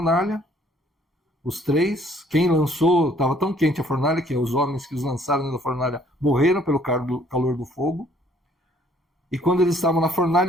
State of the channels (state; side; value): normal; both; correlation 0.62